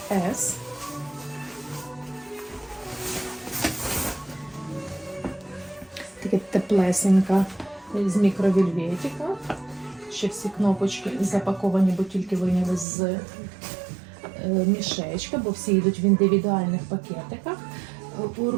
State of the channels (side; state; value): left; drops out; at 12.9 s